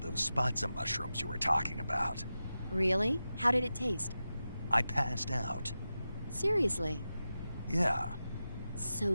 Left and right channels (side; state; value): both; inverted; correlation -0.93